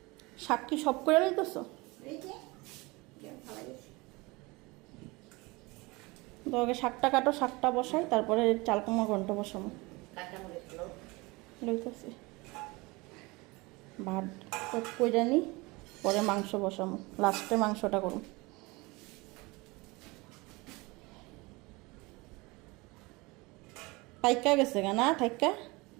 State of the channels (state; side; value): quieter; left; 24.2 dB